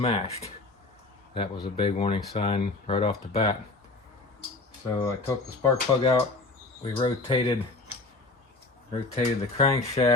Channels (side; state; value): right; quieter; 3.3 dB